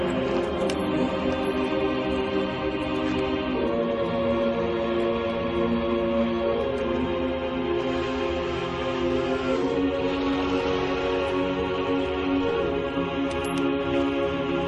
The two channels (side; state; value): both; identical; correlation 1.00